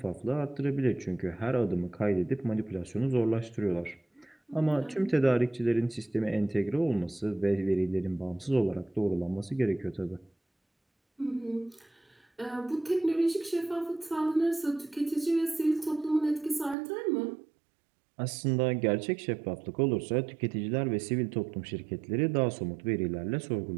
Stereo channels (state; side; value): drops out; left; at 16.8 s